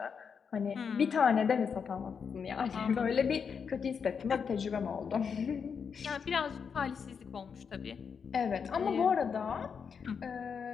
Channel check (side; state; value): right; quieter; 6.4 dB